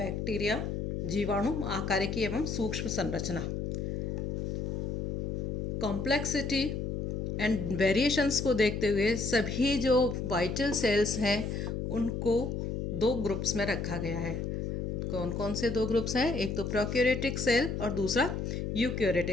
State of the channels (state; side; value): noise; left; hum, 2 dB below the sound